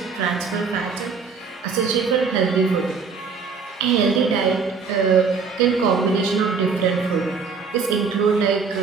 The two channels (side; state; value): left; quieter; 5.3 dB